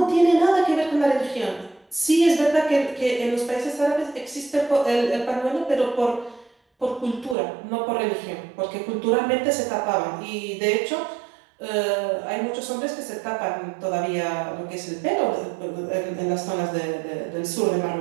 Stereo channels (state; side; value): drops out; left; at 7.4 s